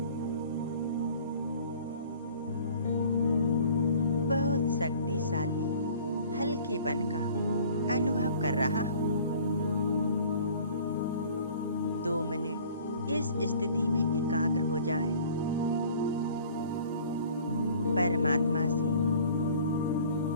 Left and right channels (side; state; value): both; inverted; correlation -0.49